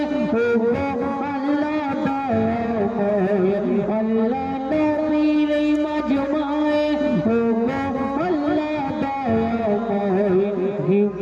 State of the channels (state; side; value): identical; both; correlation 1.00